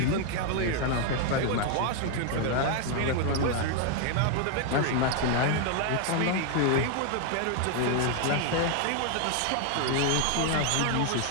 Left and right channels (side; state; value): both; different; correlation 0.00